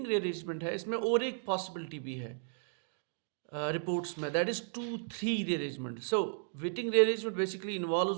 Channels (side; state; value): left; silent; digital silence